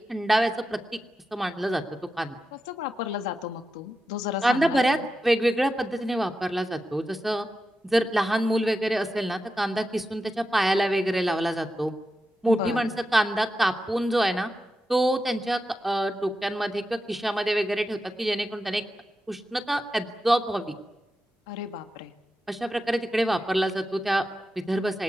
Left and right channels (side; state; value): both; normal; correlation 0.90